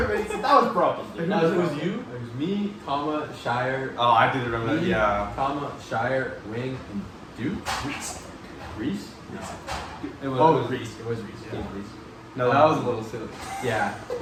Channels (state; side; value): identical; both; correlation 1.00